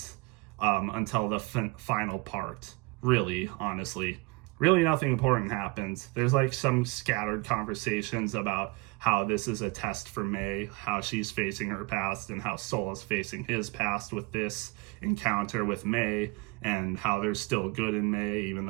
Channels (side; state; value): left; quieter; 24.8 dB